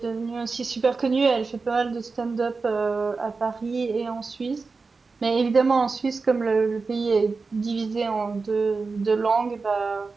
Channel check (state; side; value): quieter; left; 4.3 dB